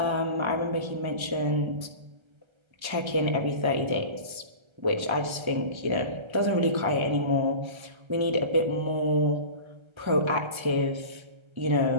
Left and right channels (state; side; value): late; left; 1.3 ms